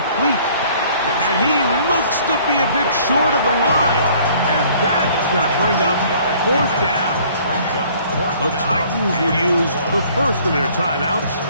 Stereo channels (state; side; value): inverted; both; correlation -0.56